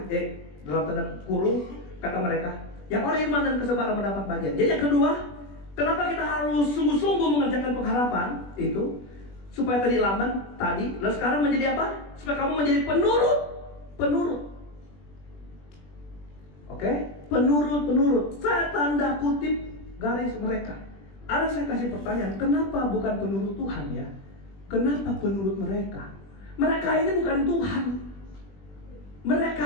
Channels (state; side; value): late; right; 20 ms